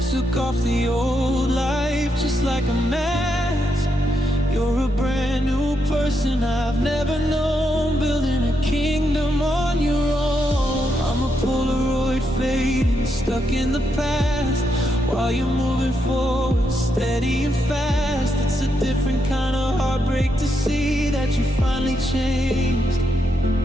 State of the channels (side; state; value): both; normal; correlation 0.81